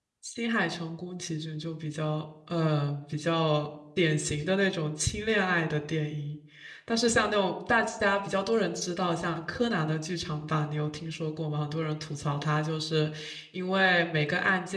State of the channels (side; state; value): both; identical; correlation 1.00